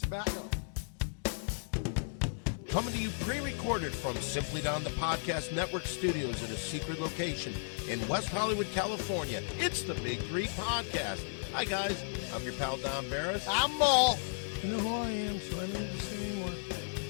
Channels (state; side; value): silent; right; digital silence